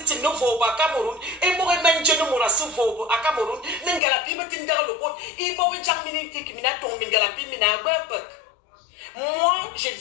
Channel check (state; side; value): drops out; right; at 4.0 s